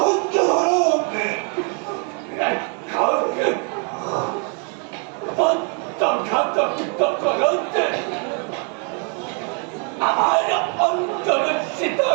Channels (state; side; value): quieter; left; 39.3 dB